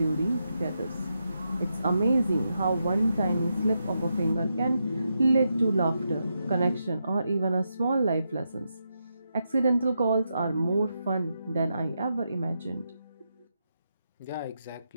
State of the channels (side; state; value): both; inverted; correlation -0.85